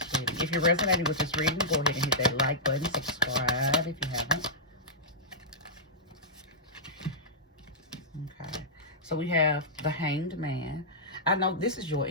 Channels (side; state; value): both; normal; correlation -0.13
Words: reading. If you're resonating with this reading, go ahead and hit that like button, subscribe if you haven't. Okay, so we have the Hanged Man. I know this is your